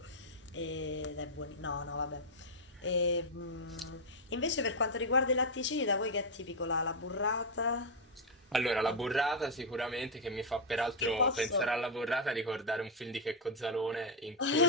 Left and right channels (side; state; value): both; normal; correlation 0.00